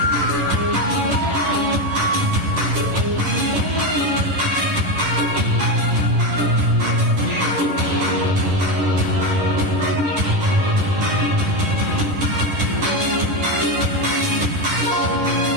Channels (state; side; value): late; left; 11 ms